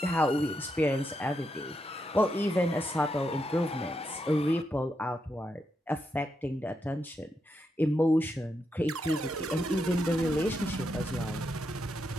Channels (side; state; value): both; normal; correlation 0.83